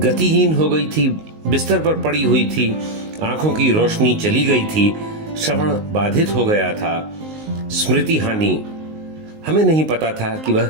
हो गई थी, बिस्तर पर पड़ी हुई थी, आंखों की रोशनी चली गई थी, श्रवण बाधित हो गया था, स्मृति हानि। हमें नहीं पता था कि वह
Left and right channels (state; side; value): late; left; 19 ms